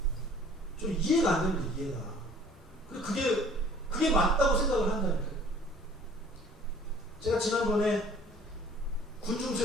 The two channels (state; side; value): normal; both; correlation 0.53